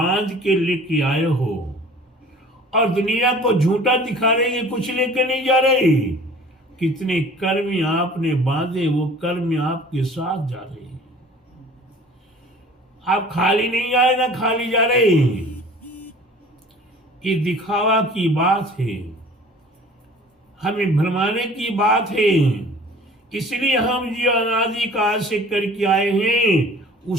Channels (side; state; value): both; normal; correlation 0.47